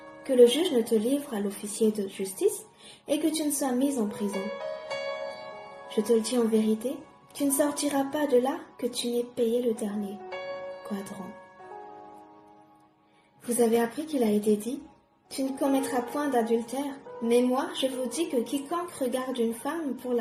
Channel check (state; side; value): identical; both; correlation 1.00